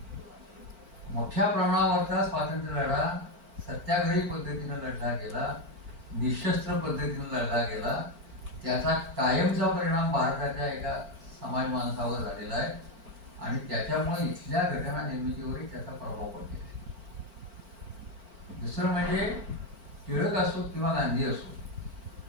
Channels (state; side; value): late; left; 4.5 ms